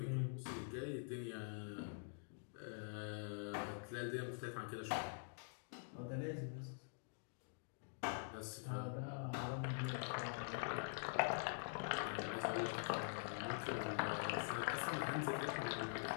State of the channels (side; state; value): right; silent; digital silence